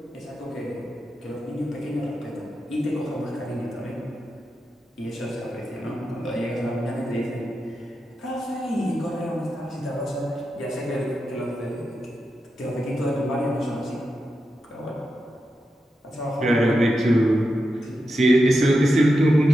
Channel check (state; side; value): normal; both; correlation 0.88